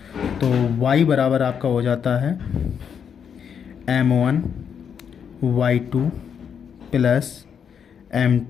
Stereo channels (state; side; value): quieter; right; 7.4 dB